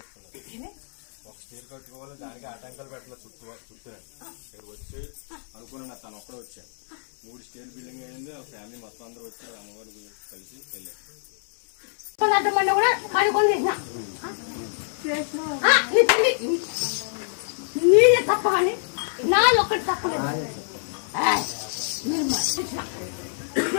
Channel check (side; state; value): right; silent; 61 dB below the other